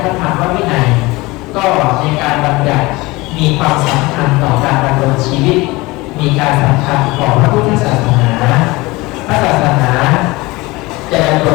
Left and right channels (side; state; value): right; quieter; 22.0 dB